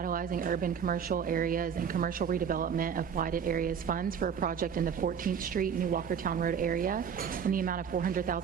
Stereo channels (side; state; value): left; quieter; 7.4 dB